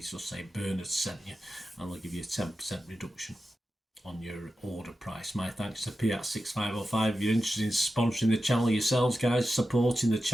say Bernard sent you, and they'll give you a 10% reduction on your order price. My thanks to Piat6505. If you're interested in sponsoring the channel yourselves, guys, supporting the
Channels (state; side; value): normal; both; correlation 0.92